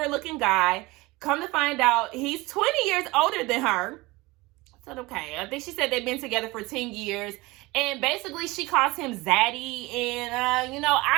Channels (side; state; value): left; quieter; 21.9 dB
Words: looking guy. Come to find out, he's 20 years older than her. I said, okay. I think she said they've been together for 10 years. And basically, she calls him Zaddy. And, you know, I